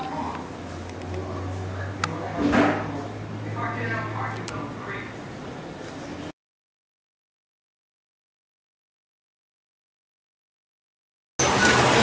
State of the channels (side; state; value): both; identical; correlation 1.00